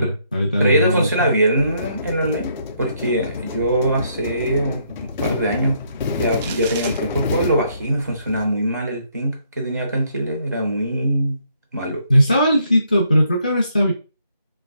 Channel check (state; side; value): inverted; both; correlation -0.71